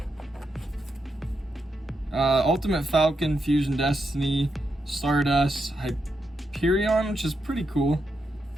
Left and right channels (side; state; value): both; normal; correlation 0.84